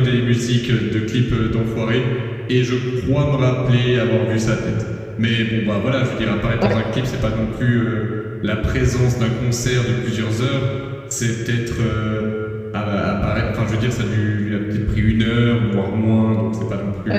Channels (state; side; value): identical; both; correlation 1.00